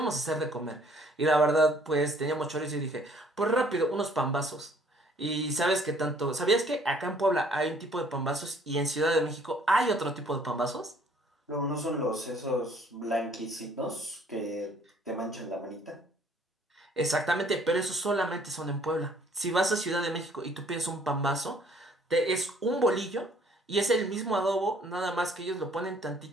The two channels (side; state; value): both; normal; correlation 0.59